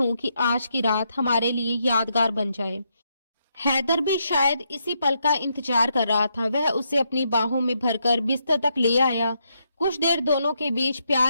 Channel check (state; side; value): inverted; both; correlation -0.79